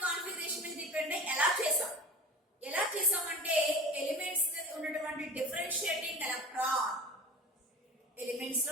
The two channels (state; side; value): normal; both; correlation 0.35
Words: కాన్ఫిగరేషన్ మీద డిపెండ్ అయ్యి ఎలా చేసామంటే ఎలిమెంట్స్ ఉన్నటువంటి డిఫరెన్షియేటింగ్ ఎలక్ట్రాన్, ఎలిమెంట్స్